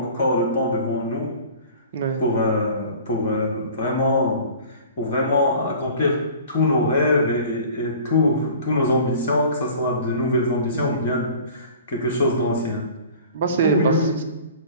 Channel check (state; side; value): inverted; both; correlation -0.44